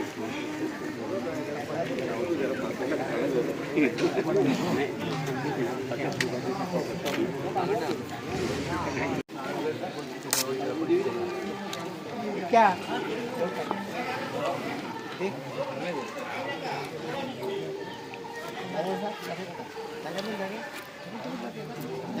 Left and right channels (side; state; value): both; identical; correlation 1.00